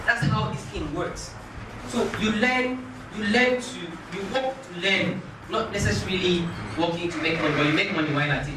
That's how this thing works. So you work to learn, not necessarily working to make money, but you make money while at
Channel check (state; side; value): identical; both; correlation 1.00